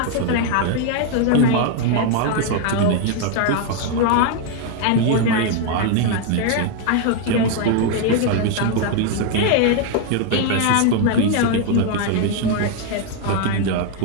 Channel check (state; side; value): different; both; correlation 0.01